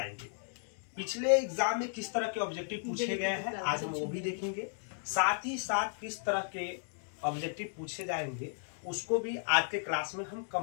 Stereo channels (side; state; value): right; silent; digital silence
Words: पिछले एग्जाम में किस तरह के ऑब्जेक्टिव पूछे गए हैं आज हम वो भी देखेंगे। साथ ही साथ किस तरह के ऑब्जेक्टिव पूछे जाएंगे उसको भी आज के क्लास में हम